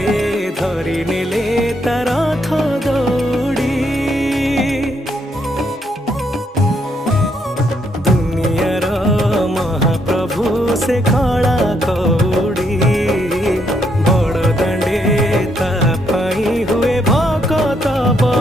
धरी नेले तार रथ दौड़ी। दुनियार महाप्रभु से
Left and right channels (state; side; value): normal; both; correlation 0.74